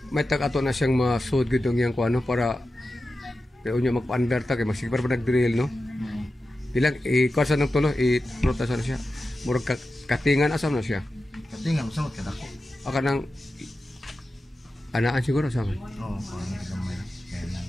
May tag-ato na siyang masud gitong yang kuano para kaya unya magpa-under ta kay masigpar pa nag-drill no. Bilang kuasa ng tulo i-protasa na siya. Murag katingan asam na siya. Katingan sa mga kadako. Aka nang anaan siguro sa akin. Oo, parang gamay. Kaya lang.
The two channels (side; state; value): both; normal; correlation 0.92